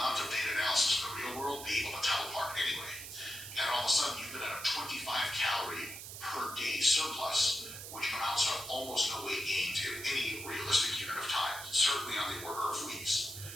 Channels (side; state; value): right; noise; hiss, 10 dB below the sound